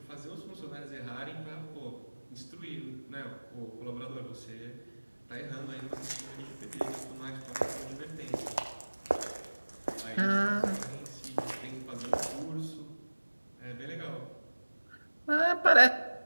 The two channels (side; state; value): both; inverted; correlation -1.00